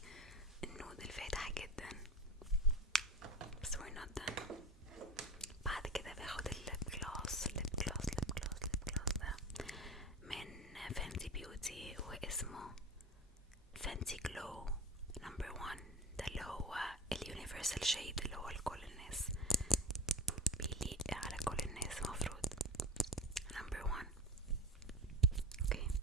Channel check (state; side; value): normal; both; correlation 0.30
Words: النود الفاتح جدا. بس we're not done. بعد كده باخد الليب جلوس ده من فانتي بيوتي، واسمه فانتي جلو نمبر 1. ده اللي هو اليونيفرسال شيد اللي هو لكل الناس، بيليق على كل الناس مفروض. نمبر 1. اوكي،